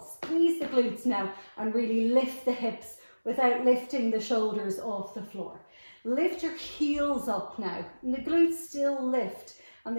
Squeeze the glutes now and really lift the hips without lifting the shoulders off the floor. Lift your heels up now, and the glutes still lift, and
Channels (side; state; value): both; inverted; correlation -1.00